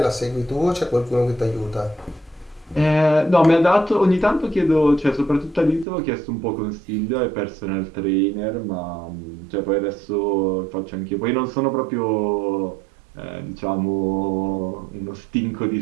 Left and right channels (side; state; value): left; drops out; at 5.9 s